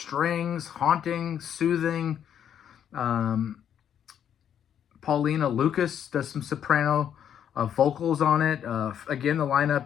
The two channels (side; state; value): right; quieter; 9.2 dB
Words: haunting, soothing. Paulina Lucas does some soprano vocals on it. Again, the